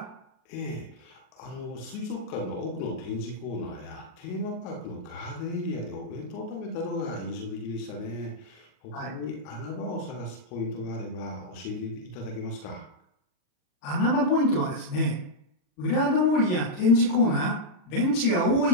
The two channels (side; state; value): right; late; 40 ms